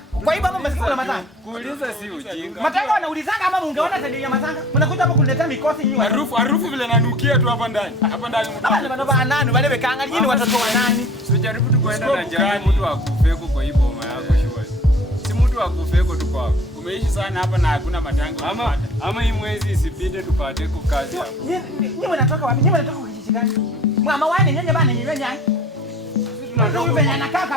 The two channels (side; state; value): both; normal; correlation 0.47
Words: Kwa hivyo umesikia kuna matanga. Kuuliza si ujinga. Matanga wanaulizanga ama ungeona tabia ya matanga. Mnakuja hapa kuniletea mikosi nyinyi. harufu vile nanukia tu hapa ndani. Hapa ndani mtu. Baba nani wale wekanga nyinyi watoto wa nani? Usijaribu tu kwenda na jamii mtu akufeko kwa hii boma yako shwari. Si mtu akufeko tu kwako. Umeishi sana hapa na hakuna matanga. Ama hii mwezi isipite tupate ku kazi hapa. Nyinyi mnatoka wapi? Nyinyi mnatoka kijiji gani? Mama wani nyenye bana nyenye nyanya. Ndio hivi anakaa